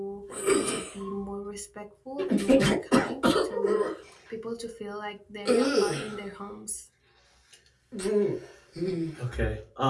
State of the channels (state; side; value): identical; both; correlation 1.00